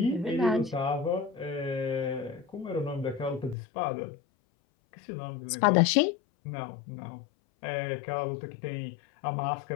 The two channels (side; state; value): right; drops out; at 3.6 s